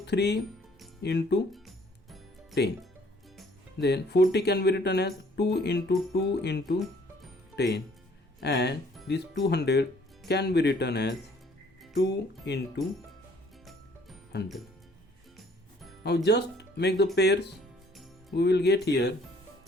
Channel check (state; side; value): normal; both; correlation 0.59